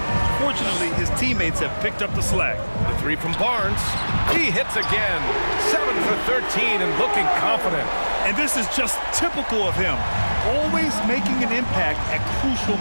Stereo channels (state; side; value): inverted; both; correlation -1.00